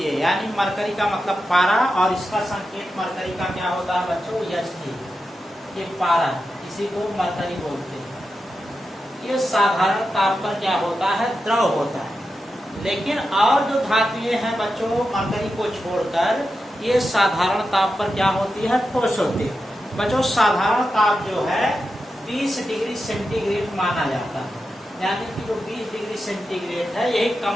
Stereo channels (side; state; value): both; normal; correlation 0.89